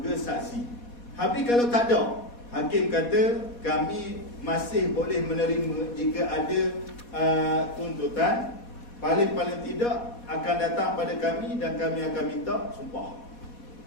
saksi. Habis kalau tak ada, hakim kata kami masih boleh menerima jika ada tuntutan, paling-paling tidak akan datang pada kami dan kami akan minta sumpah.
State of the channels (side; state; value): right; late; 4.2 ms